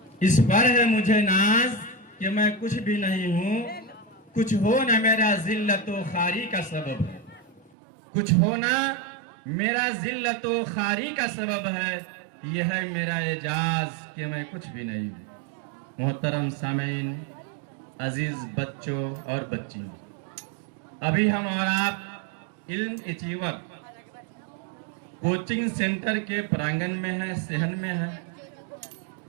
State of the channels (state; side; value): drops out; left; at 7.7 s